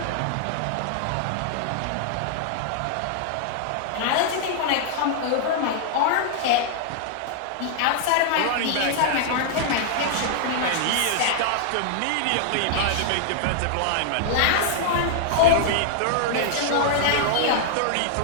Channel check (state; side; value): different; both; correlation -0.01